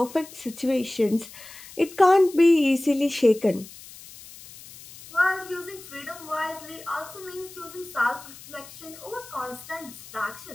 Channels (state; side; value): noise; left; hiss, 18 dB below the sound